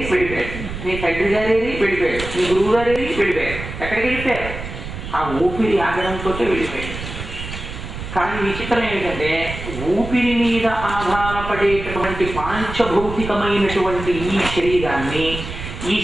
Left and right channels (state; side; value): noise; right; rumble, 9 dB below the sound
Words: వెళ్ళిపోయాడు, నీ తండ్రి గారేది వెళ్ళిపోయాడు, నీ గురువు గారేది వెళ్ళిపోయాడు. ఎక్కడికి వెళ్ళిపోయారు? ఆ ఊపిరి ఆగడంతో వెళ్ళిపోయాడు. కానీ విచిత్రం ఏమిటంటే, ఊపిరి మీద ఆధారపడేటటువంటి పాంచభౌతికమైనటువంటి ఈ శరీరాన్ని, ఈ